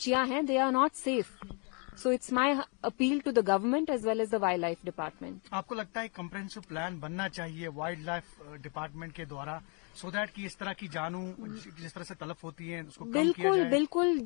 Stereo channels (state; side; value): quieter; right; 36.0 dB